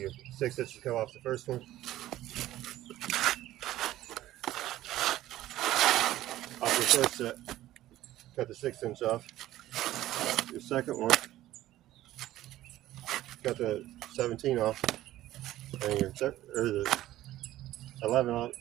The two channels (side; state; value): left; quieter; 14.7 dB